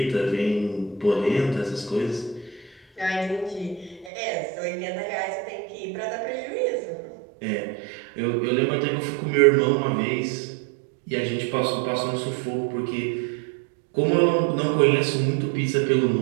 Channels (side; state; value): left; drops out; at 4.1 s